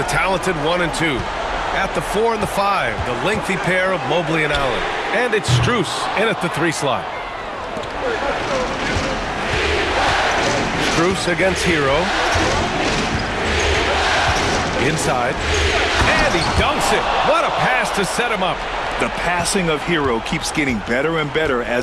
talented 1 and 2. At the 4 and the 5, the lengthy pair of Mobley and Allen. And it's Strus in at the 3 slot. Strus against Hero. Inside. And he dunks it. What a pass to set him up. The passing of Hero keeps getting better and better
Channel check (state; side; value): identical; both; correlation 1.00